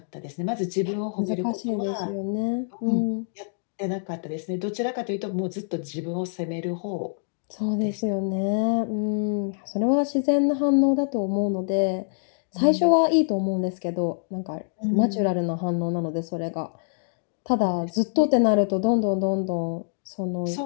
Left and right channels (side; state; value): right; silent; digital silence